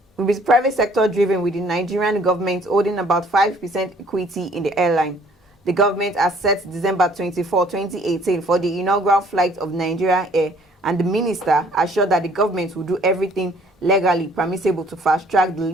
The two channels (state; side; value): normal; both; correlation 0.58